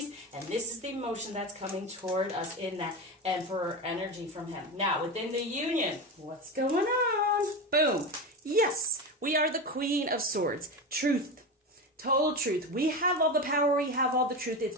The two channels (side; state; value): both; normal; correlation 0.21